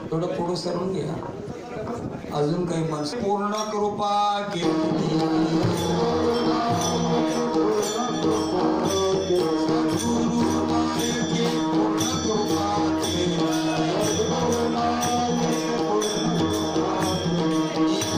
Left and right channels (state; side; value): identical; both; correlation 1.00